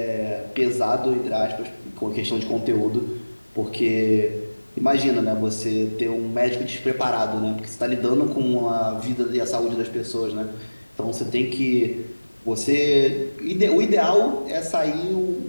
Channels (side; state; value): both; inverted; correlation -1.00